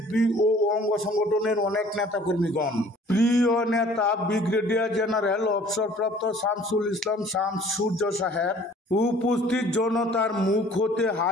ও অঙ্গ সংগঠনের অনেক নেতাকর্মীগণ। প্রিয় নেতা ব্রিগেডিয়ার জেনারেল অবসরপ্রাপ্ত শামসুল ইসলাম শামস সূর্য সাহেব উপস্থিত জনতার মুখ হতে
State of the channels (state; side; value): normal; both; correlation 0.52